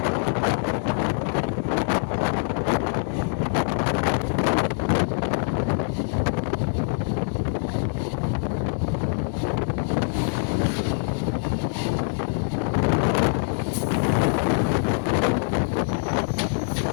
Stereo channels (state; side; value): silent; right; digital silence